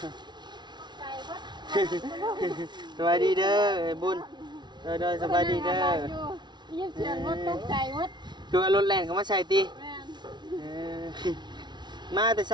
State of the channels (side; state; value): left; late; 0.21 ms